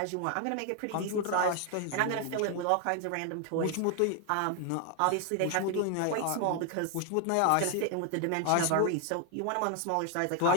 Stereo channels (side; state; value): both; different; correlation 0.00